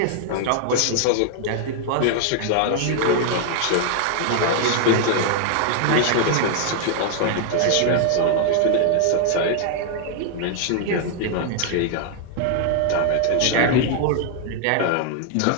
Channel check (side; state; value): both; different; correlation 0.00